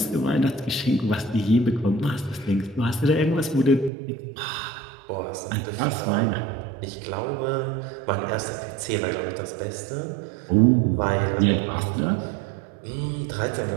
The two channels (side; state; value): left; drops out; at 3.9 s